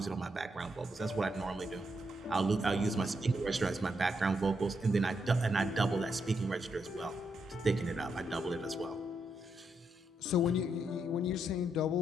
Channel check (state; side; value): normal; both; correlation 0.80